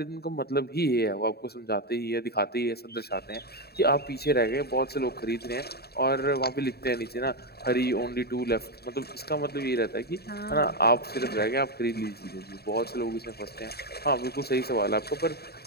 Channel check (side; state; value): right; late; 0.46 ms